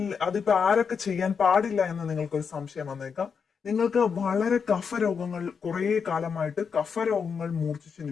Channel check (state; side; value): quieter; right; 6.2 dB